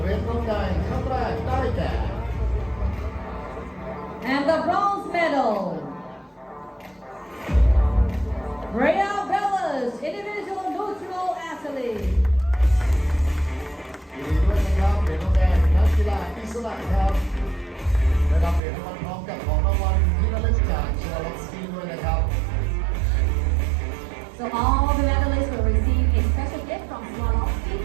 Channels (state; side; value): drops out; left; at 18.6 s